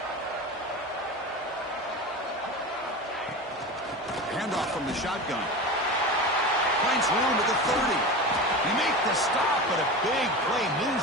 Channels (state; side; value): normal; both; correlation 0.28